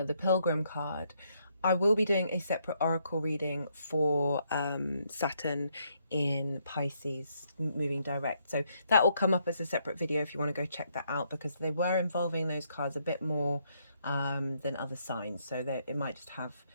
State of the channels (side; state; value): both; inverted; correlation -0.74